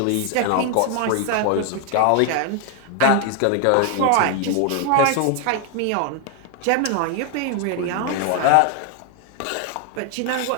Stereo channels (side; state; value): both; different; correlation 0.01